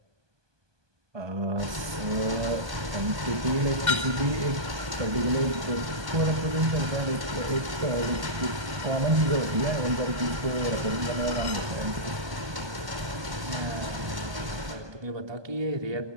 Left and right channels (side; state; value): left; late; 1.2 ms